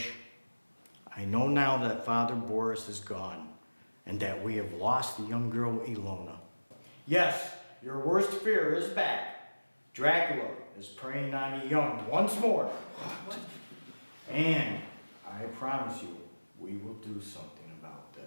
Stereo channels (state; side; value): inverted; both; correlation -1.00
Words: I know now that Father Boris is gone, and that we have lost the young girl Ilona. Yes, your worst fear is back. Dracula is preying on the young once more. What? And I promise you, we will do something about